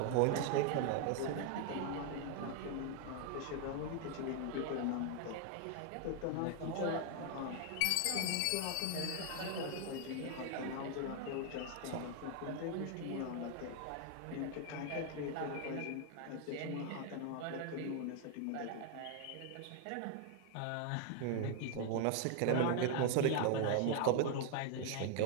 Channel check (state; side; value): different; both; correlation 0.00